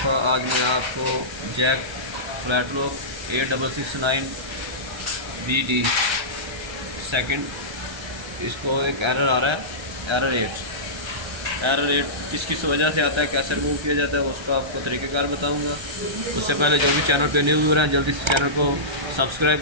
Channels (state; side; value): late; left; 1.3 ms